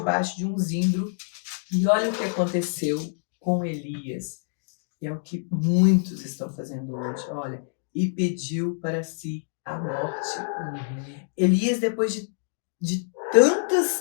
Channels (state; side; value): silent; right; digital silence